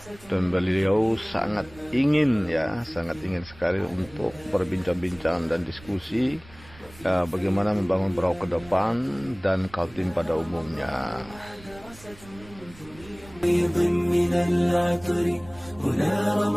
dan beliau sangat ingin sekali untuk berbincang-bincang dan diskusi bagaimana membangun Berau ke depan dan Kaltim pada umumnya. هنا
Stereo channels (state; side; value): noise; right; rumble, 21 dB below the sound